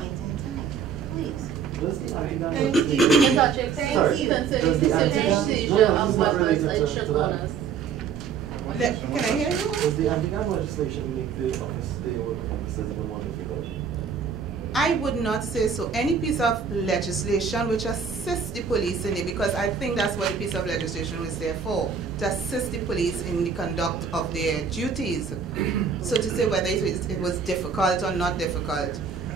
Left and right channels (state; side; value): quieter; left; 6.4 dB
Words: in time. Please. Thank you. Ms. Archie, Thank sorry, you. concerning Does the the anti-gun- seizure no, of it's not weapons related and to shot that. owners. Can I hear you? Does the anti-gun legislation make the office, the work of officers even more difficult? I would not say so. Any piece of legislation which assists the police in it, because I think that's what the piece of legislation was there for, to assist the police in the conduct of their duties. So to say whether it was difficult or not difficult,